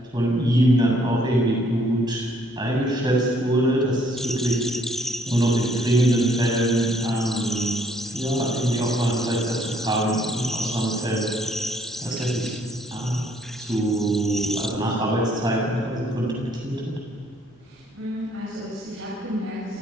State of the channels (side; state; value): both; normal; correlation 0.66